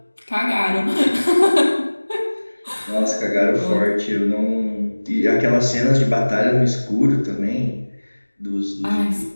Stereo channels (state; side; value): inverted; both; correlation -1.00